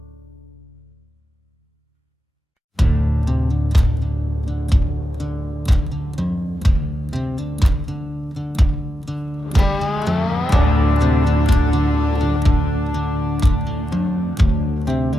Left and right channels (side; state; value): both; normal; correlation 0.87